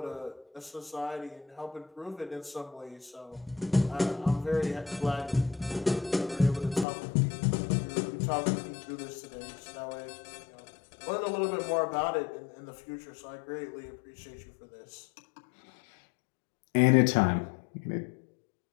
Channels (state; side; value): drops out; right; at 6.9 s